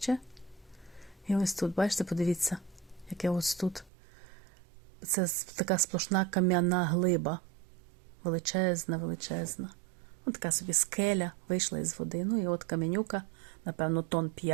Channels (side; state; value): left; drops out; at 3.9 s